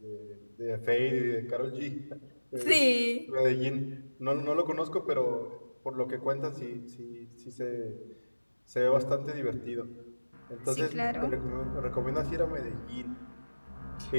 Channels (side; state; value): both; inverted; correlation -1.00